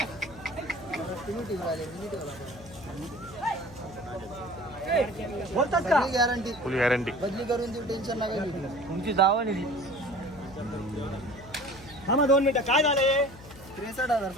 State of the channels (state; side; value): noise; left; hum, 18 dB below the sound